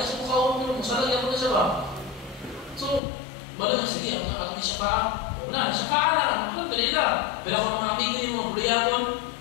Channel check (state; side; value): drops out; right; at 3.0 s